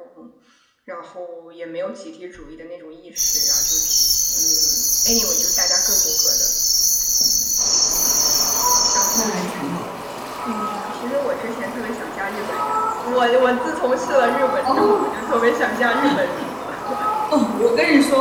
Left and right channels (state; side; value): identical; both; correlation 1.00